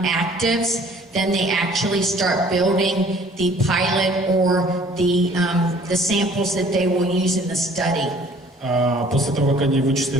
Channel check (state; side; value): normal; both; correlation 0.54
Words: actives, then they actually start building the pilot or the samples that they will use in the study. После того, как они